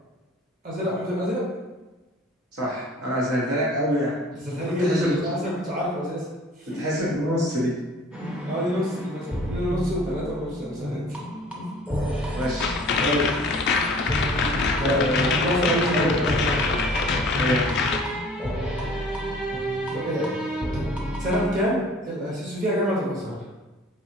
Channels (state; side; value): normal; both; correlation 0.49